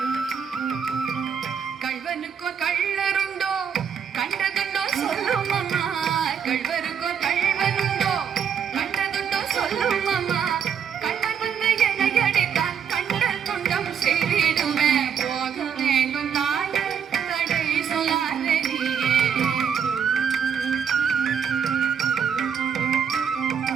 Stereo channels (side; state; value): left; quieter; 7.5 dB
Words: கள்வனுக்கோ கள்ளருண்டோ கண்டதுண்டோ சொல்லும் அம்மா. கள்வருக்கோ கள்வனுண்டோ கண்டதுண்டோ சொல்லும் அம்மா. கள்வர் வந்து என்னை அடித்தால் கண்டல் துண்டம் செய்திடுவேன். போக வேண்டும் தாயே தடை சொல்லாதே நீயே.